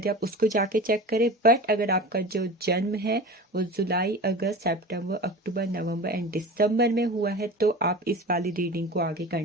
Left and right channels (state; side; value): normal; both; correlation 0.34